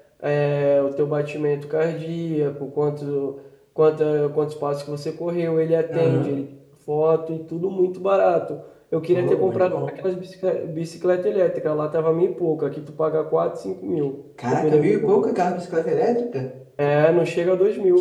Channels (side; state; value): both; identical; correlation 1.00